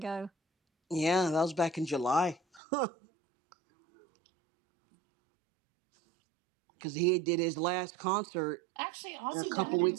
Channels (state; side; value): drops out; left; at 2.6 s